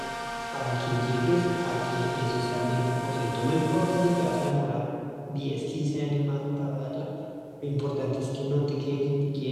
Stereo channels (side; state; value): both; identical; correlation 1.00